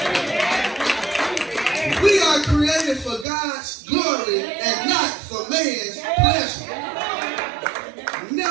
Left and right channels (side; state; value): left; drops out; at 3.2 s